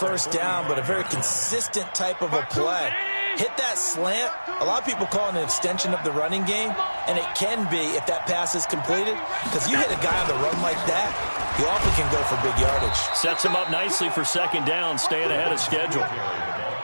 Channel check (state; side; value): inverted; both; correlation -1.00